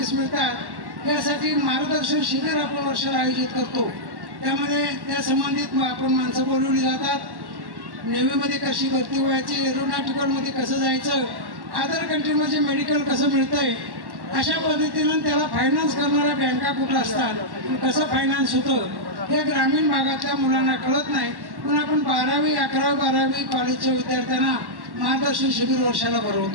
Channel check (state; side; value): late; left; 1.1 ms